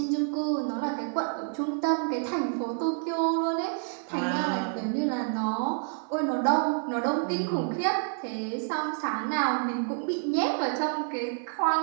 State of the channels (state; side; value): silent; left; 59 dB below the other